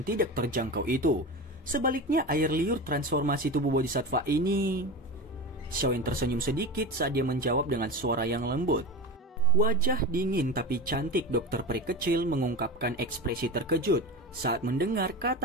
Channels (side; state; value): both; normal; correlation 0.25